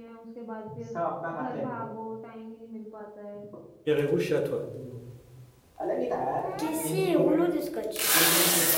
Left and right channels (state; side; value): identical; both; correlation 1.00